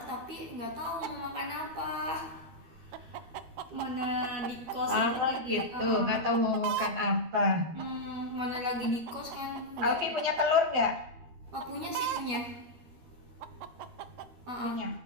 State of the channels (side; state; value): left; late; 13 ms